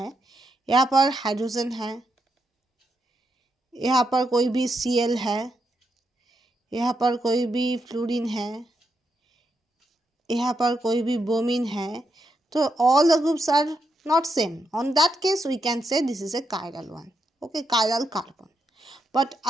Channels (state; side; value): normal; both; correlation 0.82